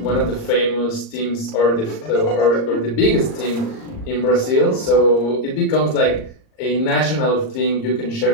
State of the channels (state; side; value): late; right; 38 ms